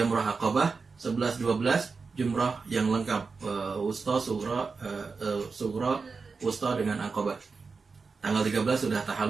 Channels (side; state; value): left; quieter; 4.7 dB